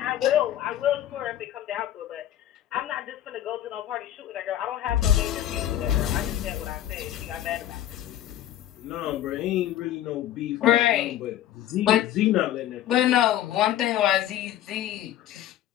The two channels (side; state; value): right; quieter; 12.3 dB